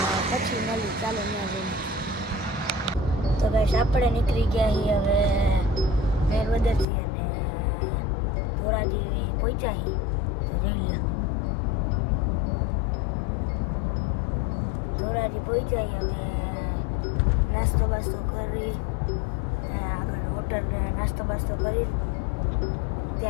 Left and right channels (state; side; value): drops out; right; at 6.9 s